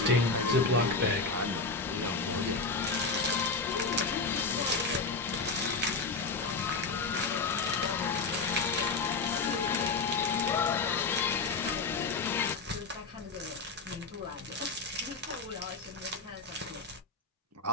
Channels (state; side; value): quieter; right; 4.1 dB